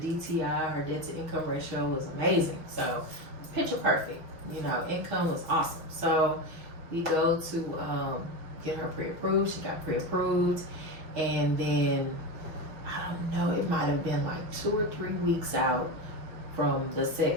her debt to income ratio, was amazing. So picture perfect. Income was awesome. So we go to get her pre-approved. She got pre-approved, and then I don't know. It might have been like 2 or 3 weeks out from the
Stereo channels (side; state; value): left; late; 6.1 ms